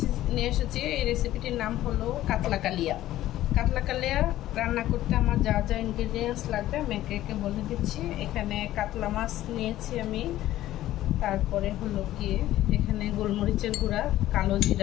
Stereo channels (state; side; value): quieter; right; 14.3 dB